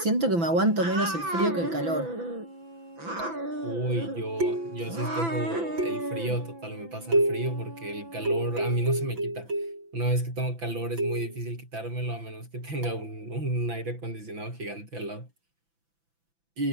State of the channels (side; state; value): left; late; 6.0 ms